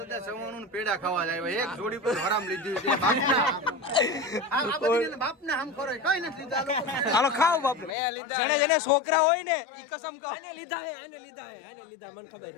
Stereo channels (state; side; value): drops out; right; at 7.9 s